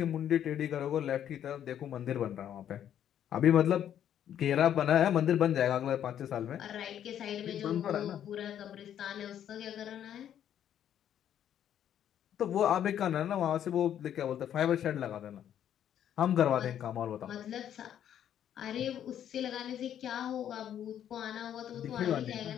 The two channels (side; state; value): right; quieter; 10.1 dB